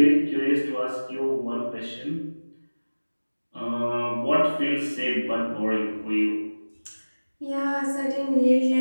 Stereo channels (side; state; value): both; inverted; correlation -1.00